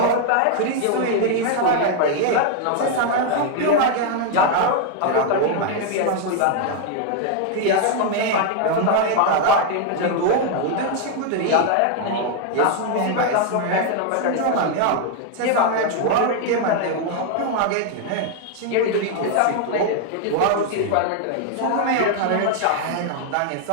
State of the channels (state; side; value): different; both; correlation 0.00